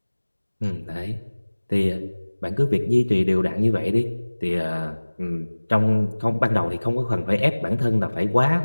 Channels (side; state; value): both; inverted; correlation -1.00